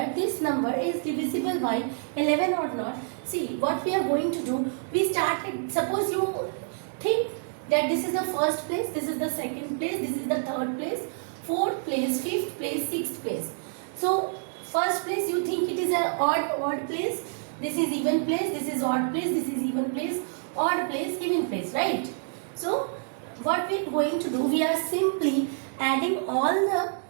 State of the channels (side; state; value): left; silent; 60 dB below the other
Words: this number is divisible by 11 or not. See, what we are going to do, we started, suppose you think that this is the first place, this is the second place, this is the third place, fourth place, fifth place, sixth place. So first place you think it is an odd place, this is even place, this is odd place, this is even place, odd place, even place, right? So what we are going to do, we are simply adding all the